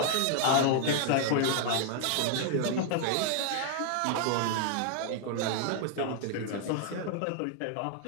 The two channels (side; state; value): both; different; correlation 0.00